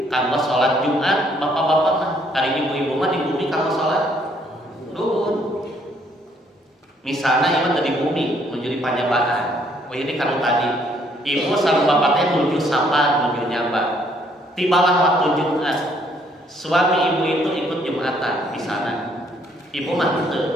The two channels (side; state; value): both; normal; correlation 0.66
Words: kanggo sholat Jumat, bapak-bapak mah hari ibu-ibu mah di bumi kanggo sholat duhur. Misalnya ibu tadi bumi menuju panyabaan, oh ini kalau tadi ibu sama bapaknya menuju sapa, menuju nyamba. Tibalah waktu Jumat, suami ibu itu ikut Jumatan di sana. Ibu mah teu